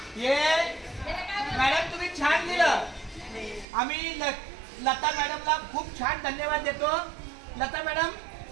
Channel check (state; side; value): drops out; left; at 3.7 s